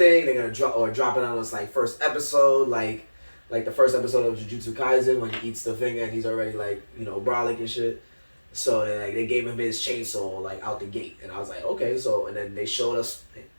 They're gonna drop it on us like first episode, like the first episode of Jujutsu Kaisen when he eats the finger and he's already like brolic and shit. So they gave him his chainsaw like out the gate, and I was like, okay, so and then they showed us.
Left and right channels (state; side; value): inverted; both; correlation -1.00